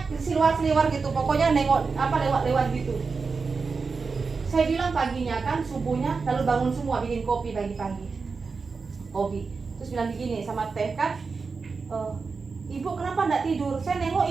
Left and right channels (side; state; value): left; quieter; 4.7 dB